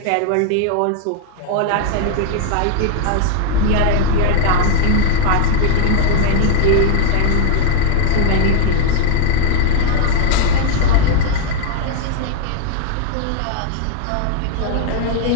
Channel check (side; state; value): both; different; correlation 0.00